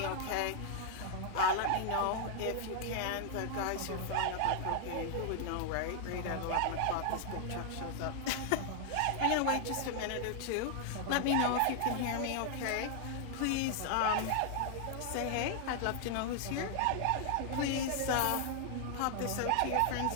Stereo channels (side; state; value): both; different; correlation 0.00